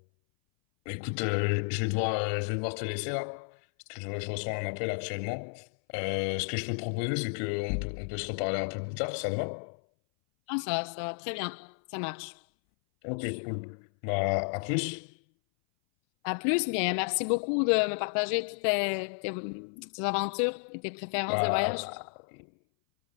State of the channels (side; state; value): right; silent; 57 dB below the other